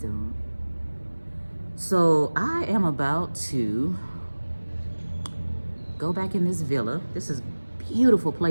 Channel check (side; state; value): both; inverted; correlation -1.00